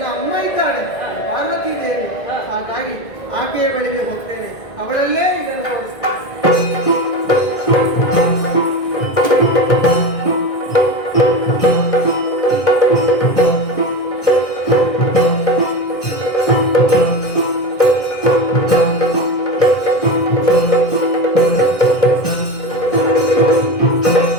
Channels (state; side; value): late; right; 2.0 ms